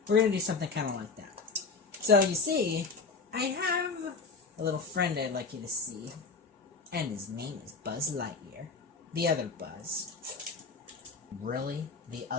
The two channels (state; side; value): quieter; right; 4.5 dB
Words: we're going to do something kind of like that. So you see, I have a little friend I'd like you to see. And his name is Buzz Lightyear. The other Buzz. Really? The